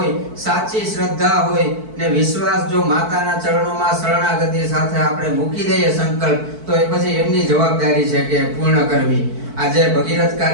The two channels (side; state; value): left; late; 4.5 ms